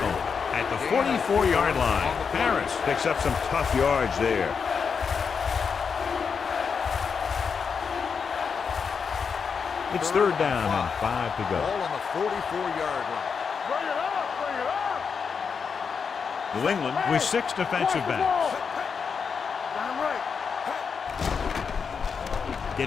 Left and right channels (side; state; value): right; quieter; 6.0 dB